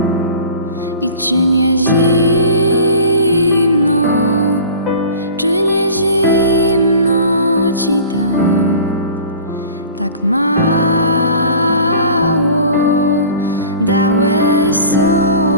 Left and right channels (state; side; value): inverted; both; correlation -0.42